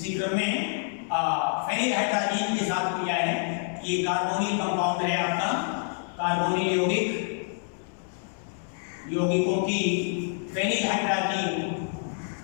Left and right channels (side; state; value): right; silent; 60 dB below the other